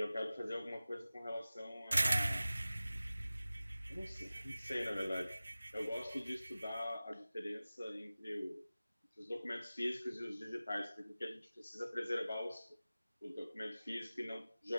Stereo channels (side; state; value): both; inverted; correlation -0.97